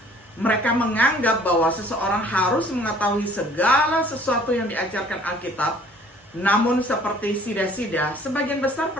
Mereka menganggap bahwa seseorang harus mengetahui segala sesuatu yang diajarkan Alkitab. Namun seperti sida-sida, sebagian besar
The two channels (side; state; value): both; normal; correlation 0.55